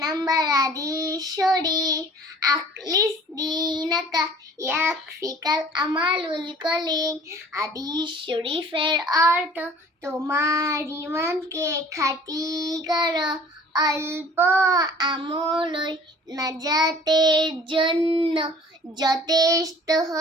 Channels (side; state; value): both; normal; correlation 0.49